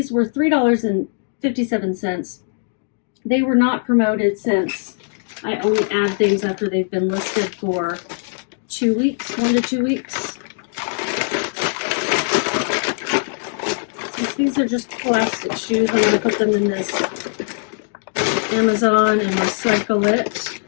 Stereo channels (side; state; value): right; silent; digital silence